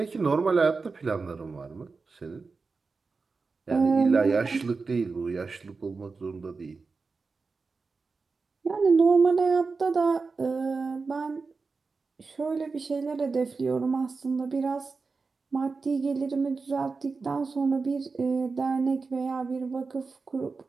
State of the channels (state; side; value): quieter; left; 4.4 dB